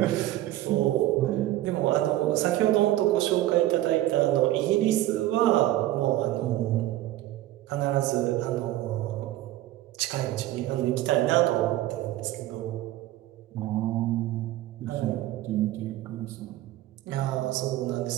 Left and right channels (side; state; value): left; quieter; 15.0 dB